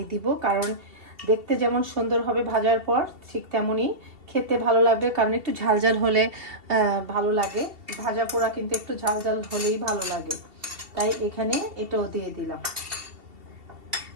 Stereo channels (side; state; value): left; late; 2.7 ms